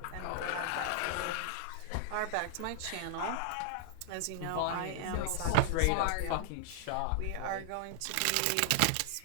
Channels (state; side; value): different; both; correlation 0.00